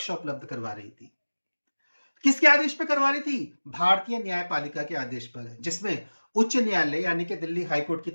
उपलब्ध करवा रही थी। किसके आदेश पर करवा रही थी? भारतीय न्यायपालिका के आदेश पर, जिसमें उच्च न्यायालय यानी कि दिल्ली हाईकोर्ट की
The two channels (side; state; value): both; inverted; correlation -1.00